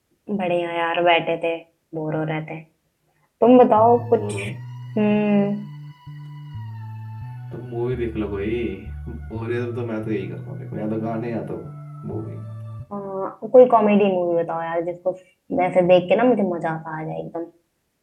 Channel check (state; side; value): identical; both; correlation 1.00